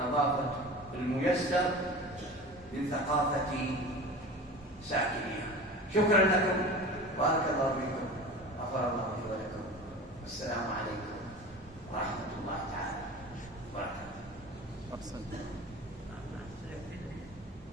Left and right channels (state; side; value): normal; both; correlation 0.35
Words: الميسر من ثقافة ساكنها. شكرا لكم، بارك الله فيكم، غفر الله لي ولكم، والسلام عليكم ورحمة الله تعالى وبركاته.